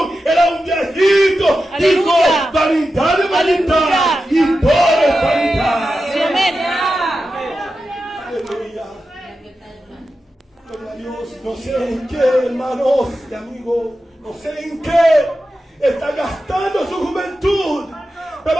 era un viejito, dijo: vanidad de vanidad y todo es vanidad. Aleluya. Gloria a Dios. No sé en qué, hermanos y amigos, no sé en qué está gastando su juventud, pero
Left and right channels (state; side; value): normal; both; correlation 0.91